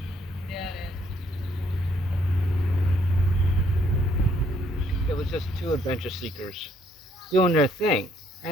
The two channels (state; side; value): normal; both; correlation 0.68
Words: It was just two adventure seekers doing their thing.